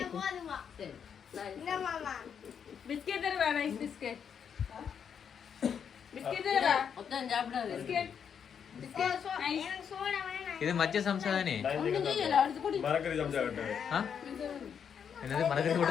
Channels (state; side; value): quieter; right; 7.5 dB